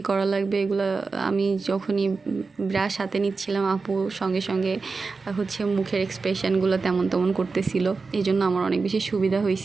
করা লাগবে এগুলো। আমি যখনই ব্রাশ হাতে নিচ্ছিলাম আপু সঙ্গে সঙ্গে হচ্ছে মুখের এক্সপ্রেশনগুলো তেমন তেমন করতেছিল, এই জন্য আমার অনেক বেশি সুবিধা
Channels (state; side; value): quieter; left; 4.3 dB